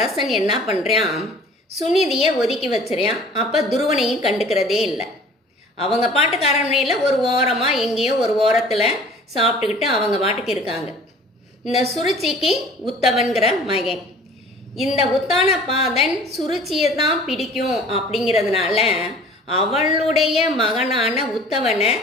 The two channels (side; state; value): both; normal; correlation 0.48